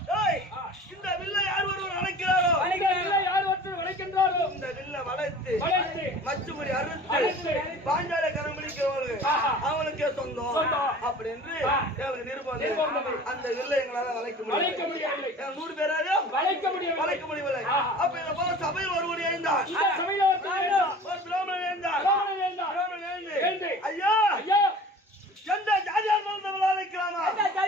இந்த வில்லை யார் ஒருவர் அழைக்கிறாரோ யார் ஒருத்தர் வளைக்கின்றாரோ இந்த வில்லை வளைத்து மச்சுமுறி அறுத்து பாஞ்சால கரமளிக்கிறவர்கள் அவனுக்கே சொந்தம் அப்படி என்று நிருபம். அந்த வில்லை எங்களால வளைக்க முடியவில்லை. 100 பேராக வளைக்க முடியவில்லை. அப்ப இதை போல சபையில் ஒருவர் எழுந்தார். ஒரு பிராமணன் எழுந்தார். ஐயா எந்த ஜாதியா இருந்தாலும் விளைவிக்கலாமா? எந்த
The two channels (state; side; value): normal; both; correlation 0.43